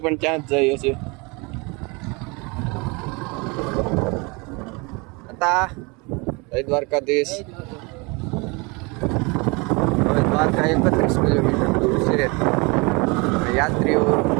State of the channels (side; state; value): left; quieter; 28.1 dB